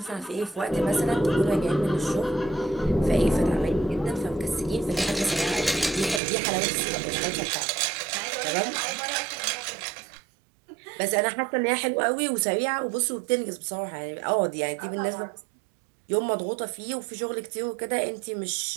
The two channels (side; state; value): left; drops out; at 6.2 s